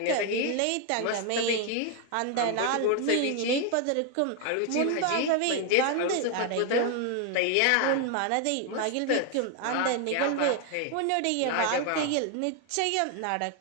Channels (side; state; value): both; different; correlation 0.01